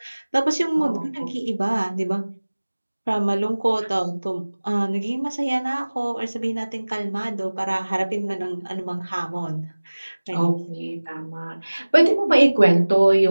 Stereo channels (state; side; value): inverted; both; correlation -1.00